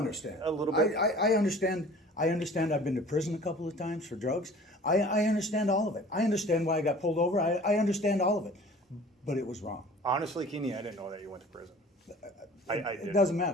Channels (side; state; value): both; normal; correlation 0.46